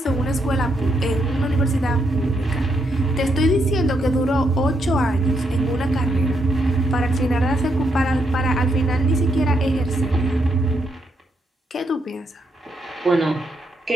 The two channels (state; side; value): normal; both; correlation 0.78